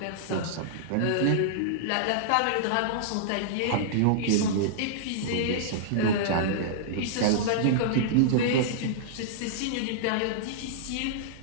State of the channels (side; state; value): both; different; correlation -0.02